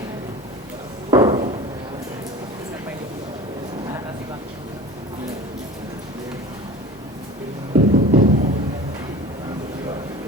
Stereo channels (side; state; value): both; normal; correlation 0.37